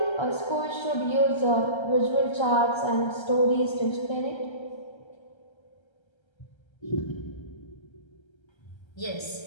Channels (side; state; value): right; late; 1.3 ms